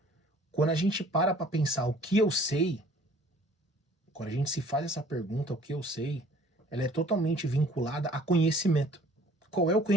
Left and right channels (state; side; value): normal; both; correlation 0.53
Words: quando a gente para pensar o que eu sei, quando a gente se faz essa pergunta, o que eu sei, ela é totalmente vinculada a conhecimento. Qual é o